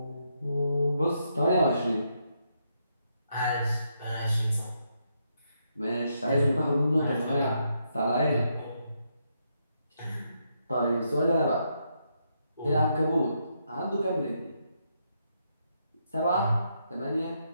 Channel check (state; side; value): inverted; both; correlation -0.78